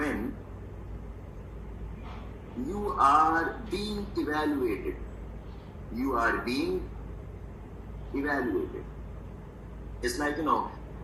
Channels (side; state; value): both; identical; correlation 1.00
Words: you are being evaluated? You are being evaluated. It's like,